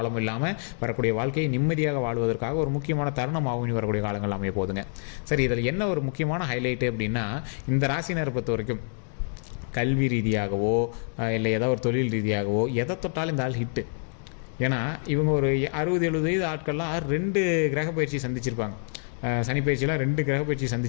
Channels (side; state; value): right; silent; digital silence